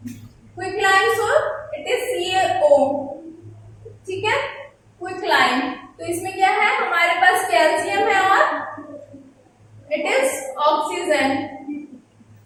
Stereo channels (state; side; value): identical; both; correlation 1.00